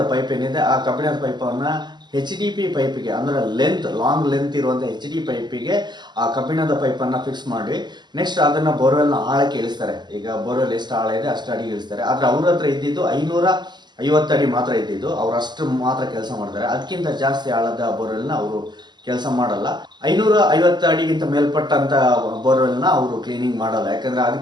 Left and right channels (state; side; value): late; left; 0.21 ms